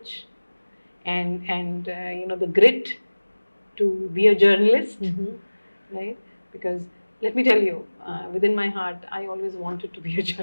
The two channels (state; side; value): inverted; both; correlation -1.00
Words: and the grit to be a journalist, right? Because let me tell you, within my heart, I always wanted to be a